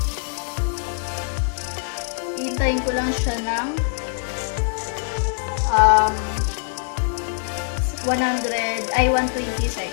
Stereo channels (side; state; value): right; silent; digital silence